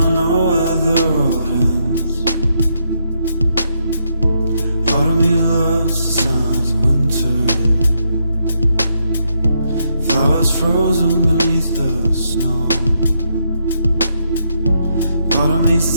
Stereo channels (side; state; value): both; inverted; correlation -0.78